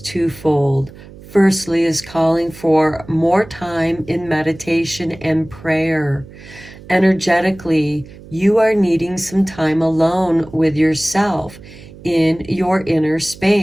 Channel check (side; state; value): right; noise; hum, 19 dB below the sound